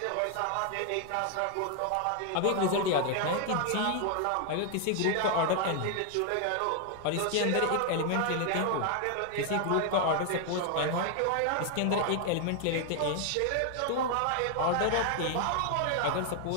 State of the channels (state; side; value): different; both; correlation 0.00